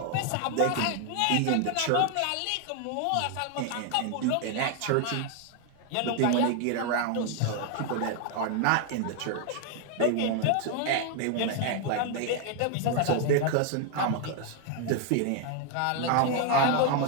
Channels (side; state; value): both; different; correlation 0.01